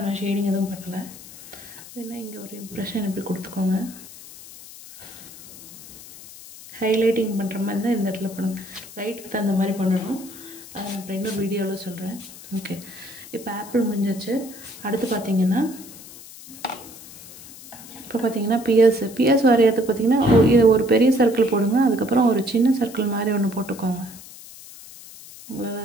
நான் ஷேடிங் எதுவும் பண்ணலை. வேணா இங்கே ஒரு இம்ப்ரெஷன் இப்படி கொடுத்துக்கோங்க. ஹைலைட்டிங் பண்ணுற மாதிரி தான் இந்த இடத்துல பண்ணுங்கள். லைட்டுக்கு தகுந்த மாதிரி பண்ணணும். அதை நான் இப்போ இன்னொரு வீடியோவில் சொல்கிறேன். ஓகே, இப்போ ஆப்பிள் முடிஞ்சிச்சு. அடுத்து பார்த்தீங்கன்னா இப்போ பார்த்தீங்கன்னா பிஎஸ் வரைகிறதுக்கு பார்த்தீங்கன்னா இது ஒரு பெரிய சர்க்கிள் போடுங்க. அதுக்கப்புறம் ஒரு சின்ன சர்க்கிள் மாதிரி ஒன்று போட்டுக்கோங்க.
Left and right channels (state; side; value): noise; left; hiss, 17 dB below the sound